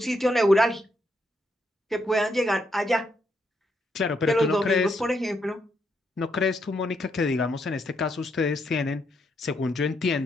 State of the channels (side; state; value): both; normal; correlation 0.78